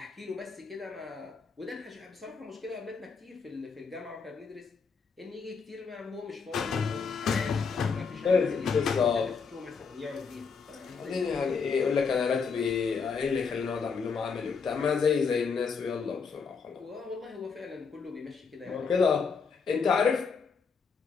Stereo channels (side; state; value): right; quieter; 5.4 dB